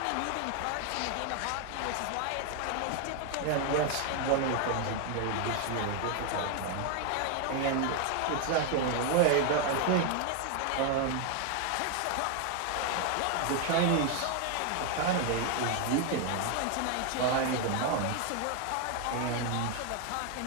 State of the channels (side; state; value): both; different; correlation 0.00